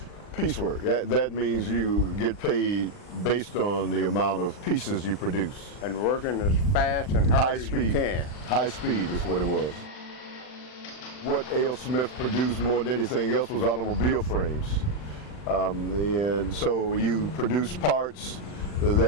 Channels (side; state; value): right; late; 40 ms